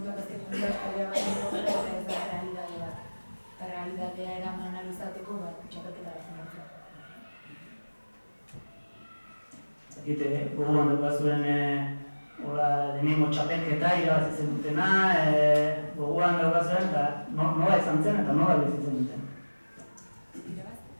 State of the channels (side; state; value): both; inverted; correlation -1.00